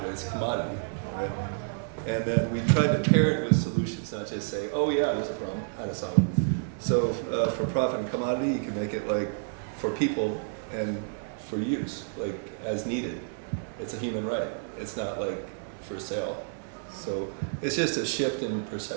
it's commodity, right? And then we tried to pair it with solutions, not just say, oh yeah, there's a problem, how to solve it. So for profit and commodity, you can make it like for people and for use, like as needed. It's a human right. It's not like for sale. So it's just a shift in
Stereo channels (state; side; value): silent; left; digital silence